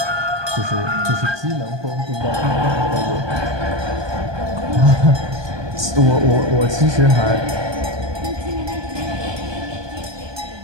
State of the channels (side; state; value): left; late; 1.2 ms